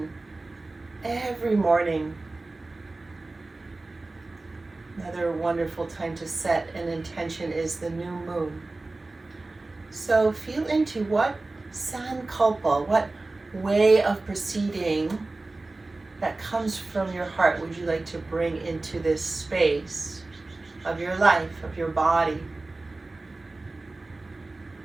every morning. Another wonderful time to set an intention is the new moon. So feel into what Sankalpa, what way of proceeding that comes from your heart would you like to bring into this space of your life, of your body.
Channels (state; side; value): quieter; left; 3.2 dB